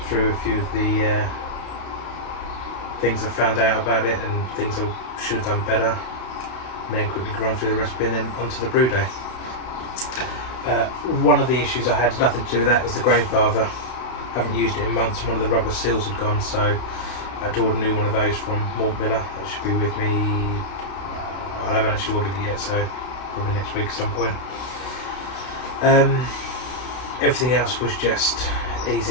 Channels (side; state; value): right; late; 32 ms